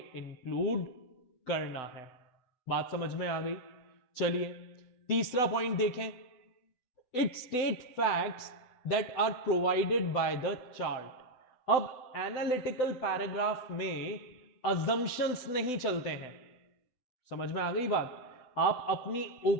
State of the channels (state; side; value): late; right; 7.9 ms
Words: इंक्लूड करना है। बात समझ में आ गई? चलिए तीसरा पॉइंट देखें। It state facts that are provided by the chart. अब एनालिटिकल पैराग्राफ में अजम्पशंस नहीं चलते हैं। समझ में आ गई बात? आप अपनी